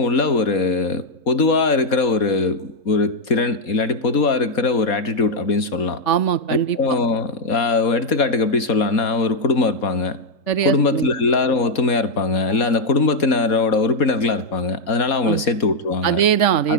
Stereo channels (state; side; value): late; right; 4.2 ms